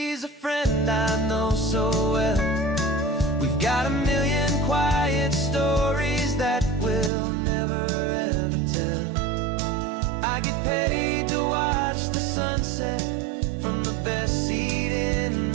a friend I know so well. We've got a million quiet stories that we'll never ever tell. I get paid to watch the sunset from the best seat in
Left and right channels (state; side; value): drops out; left; at 7.1 s